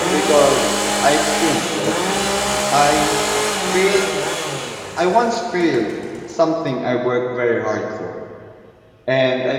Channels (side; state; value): both; identical; correlation 1.00